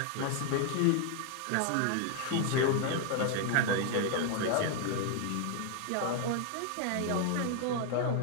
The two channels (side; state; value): both; different; correlation 0.00